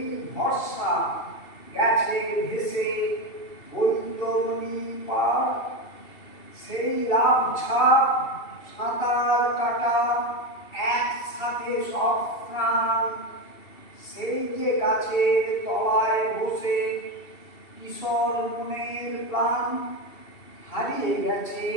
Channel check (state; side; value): late; right; 2.7 ms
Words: ভরসা গেছে ভেসে বৈতরণী পার। সেই লাভ ঝাঁপ সাঁতার কাটা একসাথে সব প্রাণ, সেই যে গাছের তলায় বসে কিশোর মনের প্রাণ। হারিয়ে গেছে